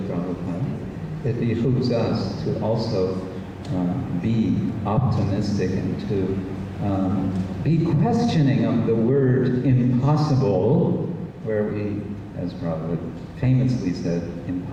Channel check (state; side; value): identical; both; correlation 1.00